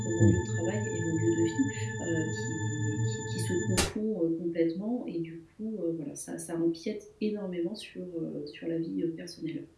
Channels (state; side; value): identical; both; correlation 1.00